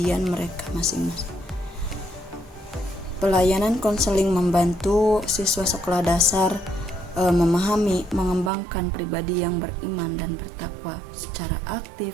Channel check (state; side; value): drops out; left; at 8.5 s